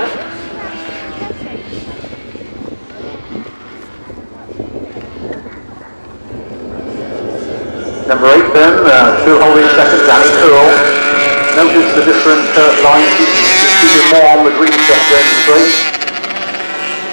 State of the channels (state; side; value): inverted; both; correlation -1.00